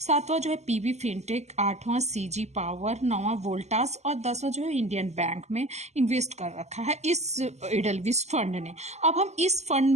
जो है पीबी फिनटेक, आठवां सीजी पावर, नौवां वोल्टास और 10वां जो है इंडियन बैंक में इन्वेस्ट कर रखा है इस इडेल्विस फंड ने। अब हम इस फंड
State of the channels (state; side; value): late; left; 0.33 ms